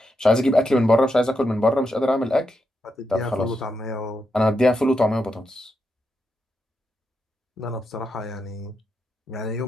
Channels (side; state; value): both; normal; correlation 0.84